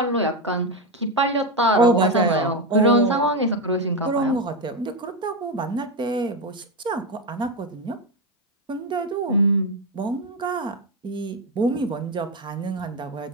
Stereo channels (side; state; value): both; normal; correlation 0.10